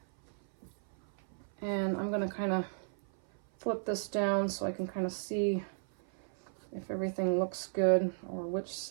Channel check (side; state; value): left; silent; 55 dB below the other